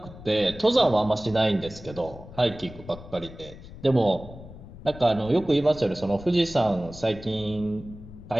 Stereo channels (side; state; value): left; noise; rumble, 16 dB below the sound